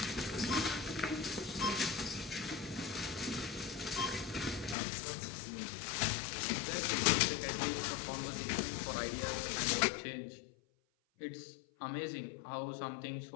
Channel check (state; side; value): drops out; right; at 4.8 s